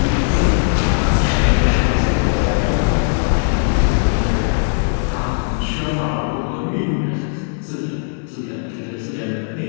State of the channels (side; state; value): right; silent; digital silence